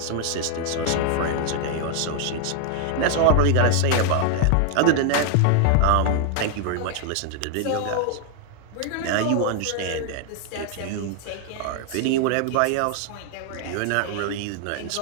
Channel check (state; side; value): different; both; correlation 0.00